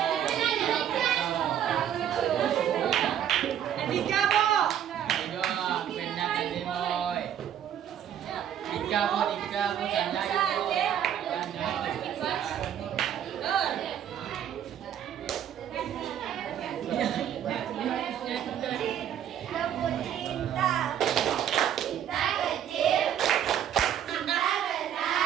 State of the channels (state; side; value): quieter; left; 9.9 dB